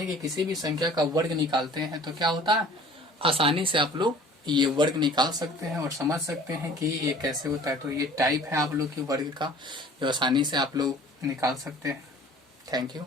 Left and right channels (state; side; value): normal; both; correlation 0.48